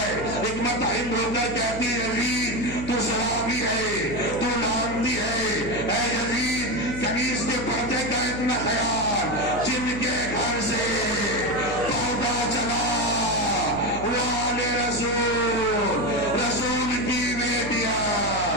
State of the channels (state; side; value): noise; left; hum, 10 dB below the sound